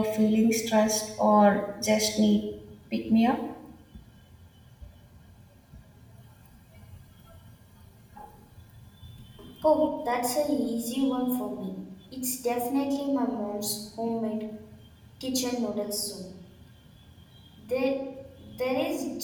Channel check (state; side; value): identical; both; correlation 1.00